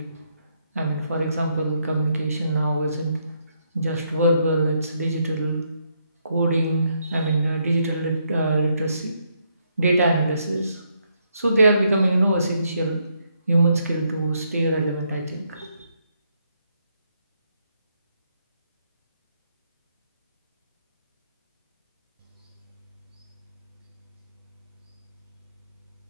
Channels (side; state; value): both; inverted; correlation -0.76